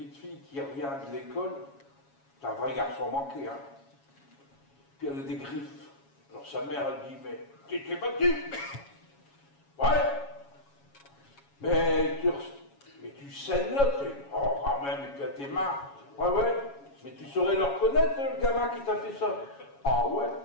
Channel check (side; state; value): right; late; 7.2 ms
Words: fille qui revient de l'école, c'est un vrai garçon manqué, hein. Puis elle a des griffes. Alors sa mère, elle dit, mais tu t'es battu? Ouais. Mais tu saignes là, oh quand même, et puis à tes mains. Ouais. Mais tu saurais le reconnaître, le gamin qui t'a fait ça? Ah ouais.